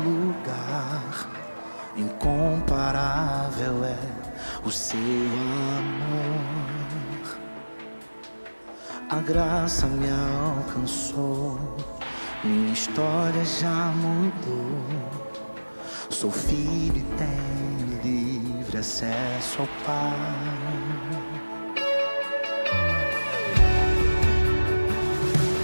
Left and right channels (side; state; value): both; inverted; correlation -1.00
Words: lugar. Incomparável é o seu amor. A graça me alcançou, minha história já mudou. Sou filho e tenho livre acesso ao Pai.